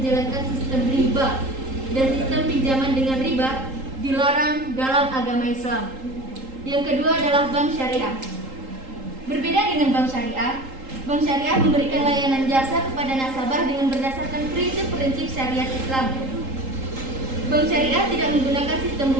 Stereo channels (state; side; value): late; left; 3.8 ms